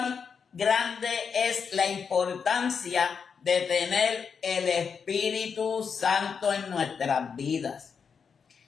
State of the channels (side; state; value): right; quieter; 6.2 dB